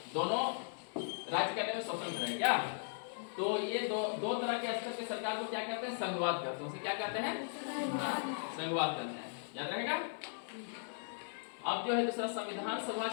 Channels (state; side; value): silent; right; 53 dB below the other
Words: दोनों राज्य करने में स्वतंत्र है क्या। तो ये दो तरह के स्तर के सरकार को क्या कहते हैं? संघवाद कहते हैं। उसे क्या कहते हैं? संघवाद कहते हैं। याद रहेगा। अब जो है दूसरा, संविधान सभा